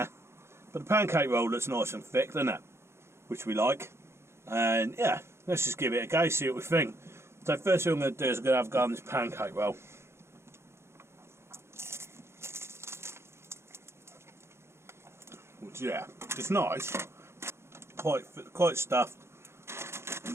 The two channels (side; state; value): left; late; 0.13 ms